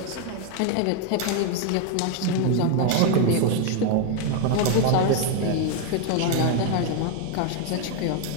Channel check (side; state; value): both; different; correlation 0.01